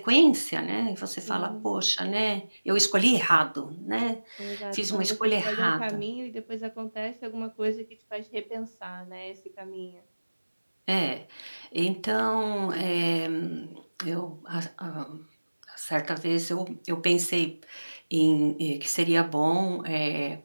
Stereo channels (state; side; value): inverted; both; correlation -1.00